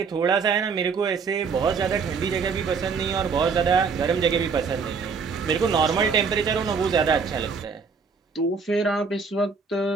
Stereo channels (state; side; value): quieter; left; 5.4 dB